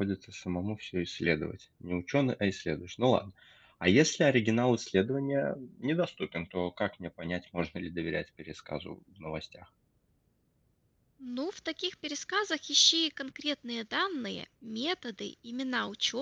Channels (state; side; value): identical; both; correlation 1.00